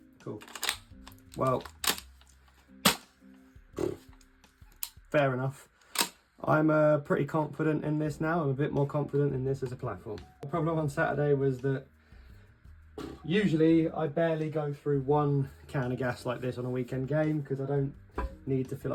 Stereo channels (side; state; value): both; identical; correlation 1.00